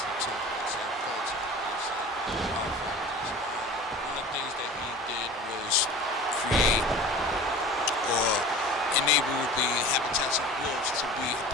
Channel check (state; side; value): normal; both; correlation 0.38